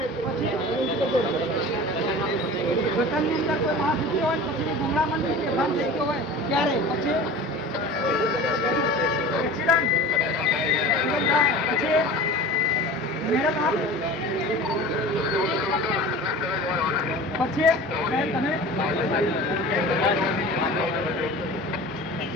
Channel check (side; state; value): both; normal; correlation 0.37